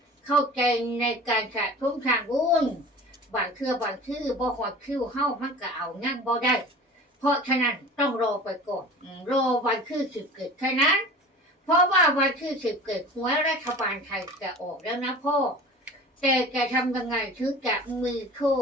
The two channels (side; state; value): both; normal; correlation 0.39